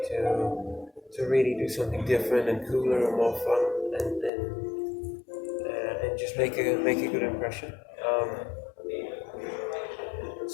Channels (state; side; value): drops out; right; at 4.3 s